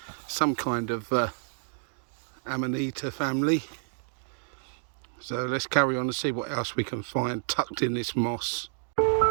Some kind of Amanita family. So let's carry on and see what else we can find tucked in this moss.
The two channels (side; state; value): left; silent; digital silence